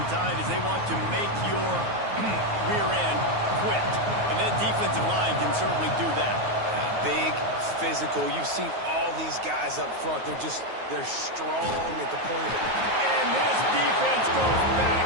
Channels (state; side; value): late; left; 9.4 ms